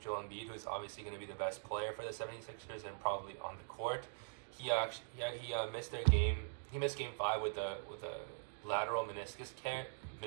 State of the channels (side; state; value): left; silent; digital silence